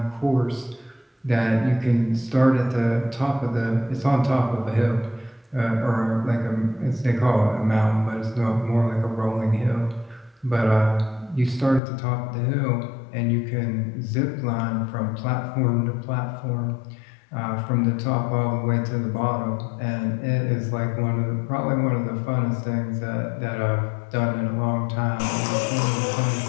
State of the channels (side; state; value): right; drops out; at 11.8 s